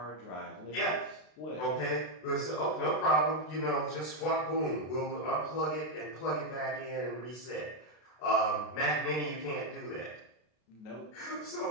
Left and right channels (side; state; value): right; late; 32 ms